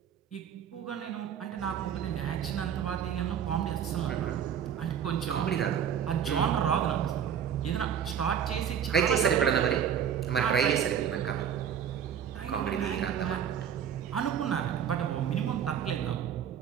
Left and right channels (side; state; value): left; quieter; 8.5 dB